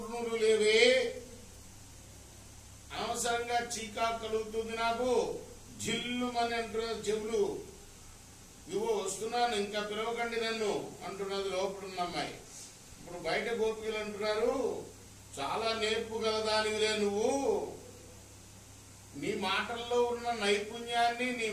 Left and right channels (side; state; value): both; identical; correlation 1.00